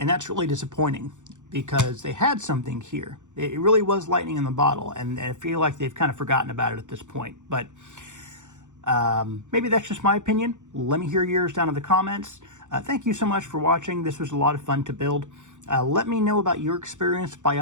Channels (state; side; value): late; left; 0.85 ms